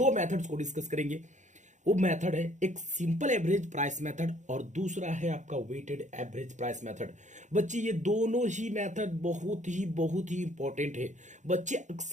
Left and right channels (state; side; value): late; left; 0.35 ms